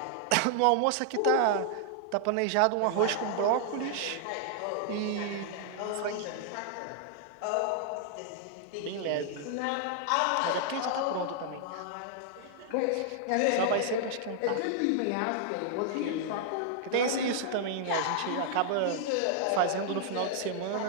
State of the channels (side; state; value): both; different; correlation 0.00